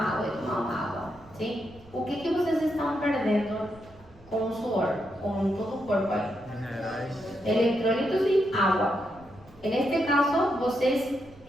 sim? O que vocês estão perdendo com o suor, com todo o corpo aí? Minerais. Eletrólitos e água. Neste caso, vocês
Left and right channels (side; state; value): right; noise; rumble, 24 dB below the sound